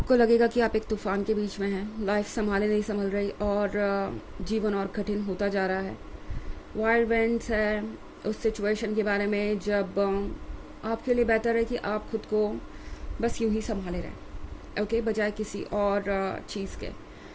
लगेगा कि आप एक तूफान के बीच में हैं, लाइफ संभाले नहीं संभल रही और जीवन और कठिन होता जा रहा है। वाइल्ड विंड्स है उस सिचुएशन के बारे में जब आपके लिए बेहतर है कि आप खुद को बस यूं ही संभाले रहें, ओके, बजाय किसी और चीज़ के।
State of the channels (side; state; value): both; identical; correlation 1.00